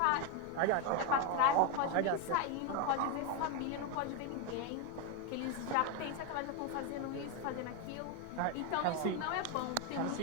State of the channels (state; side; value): different; both; correlation 0.02